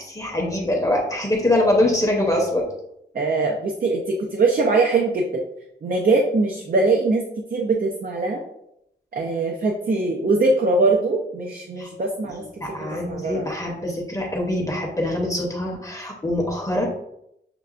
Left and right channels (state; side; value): normal; both; correlation 0.51